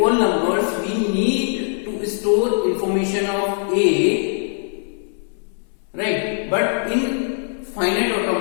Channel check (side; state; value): right; silent; 64 dB below the other